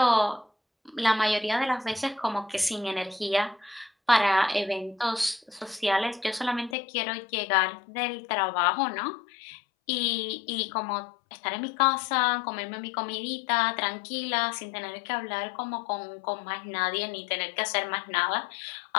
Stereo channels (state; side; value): drops out; right; at 6.8 s